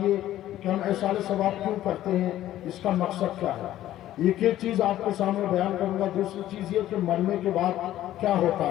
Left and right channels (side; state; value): right; quieter; 13.4 dB